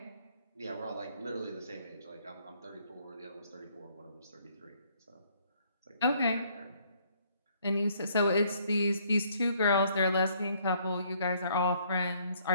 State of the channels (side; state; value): both; inverted; correlation -0.65